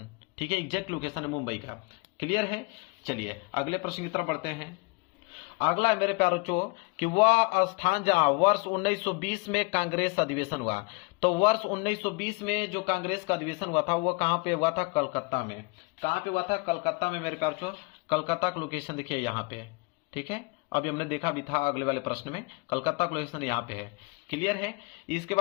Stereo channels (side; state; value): right; quieter; 28.8 dB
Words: ठीक है, एग्जैक्ट लोकेशन है मुंबई का। क्लियर है, चलिए अगले प्रश्न की तरफ बढ़ते हैं। अगला है मेरे प्यारे कि वह स्थान जहां वर्ष 1920 में कांग्रेस अधिवेशन हुआ। तो वर्ष 1920 में जो कांग्रेस का अधिवेशन हुआ था वो कहां पे हुआ था? कलकत्ता में। कहां पे हुआ था? कलकत्ता में मेरे प्यारे कलकत्ता का लोकेशन देखिए यहाँ पे। ठीक है, अभी हमने देखा भी था अगले वाले प्रश्न में, कलकत्ता का लोकेशन यहाँ पे है। क्लियर है, इसके